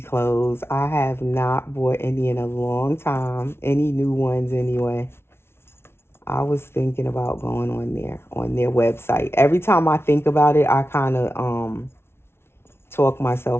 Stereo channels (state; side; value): late; right; 0.12 ms